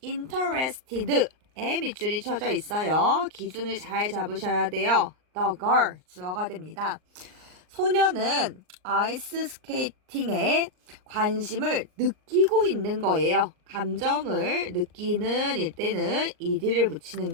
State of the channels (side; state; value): left; late; 39 ms